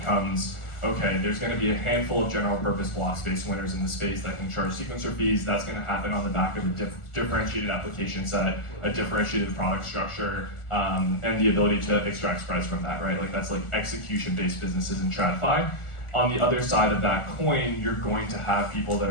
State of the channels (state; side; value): late; right; 1.4 ms